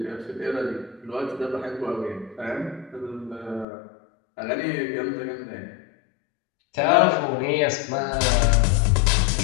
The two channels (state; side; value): drops out; right; at 3.7 s